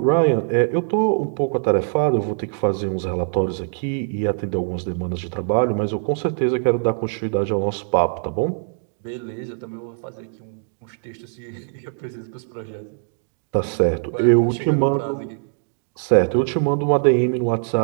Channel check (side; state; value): left; silent; digital silence